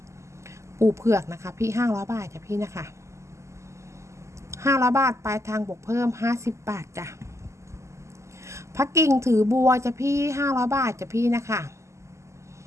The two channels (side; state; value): left; late; 0.14 ms